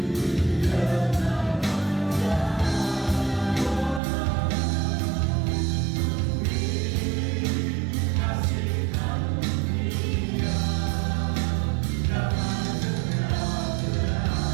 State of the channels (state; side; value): drops out; left; at 4.0 s